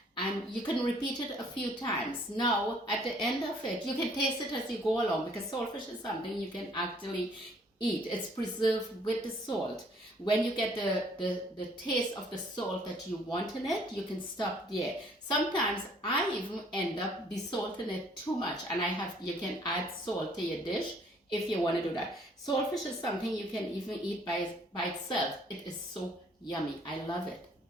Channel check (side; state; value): both; normal; correlation 0.61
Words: and you can repeat it a few times. Now, at the end of it, you can taste it as you go along because saltfish is something you can actually eat. It's preserved with the salt. When you get the taste of the salt that you want in it, you can stop there. Sometimes I even end up desalting it too much, and you can add salt to your dish if you want to do that. Saltfish is something you can even eat by itself. It is so yummy. I love it.